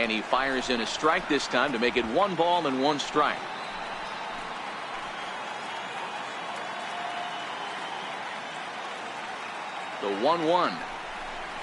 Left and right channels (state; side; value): identical; both; correlation 1.00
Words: he fires in a strike this time to make it 1 ball and 1 strike. The 1-1